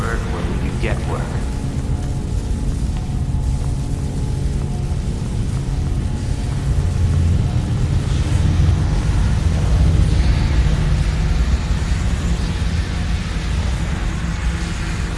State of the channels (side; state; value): both; identical; correlation 1.00